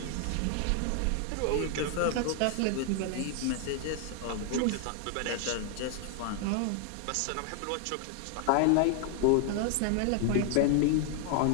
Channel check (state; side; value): different; both; correlation 0.00